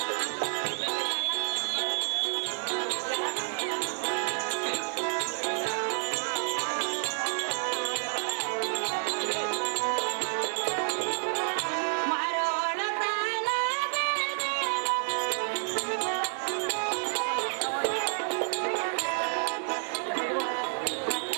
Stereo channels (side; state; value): left; silent; 58 dB below the other